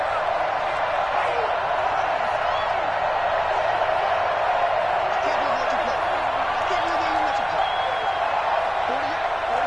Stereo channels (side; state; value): both; identical; correlation 1.00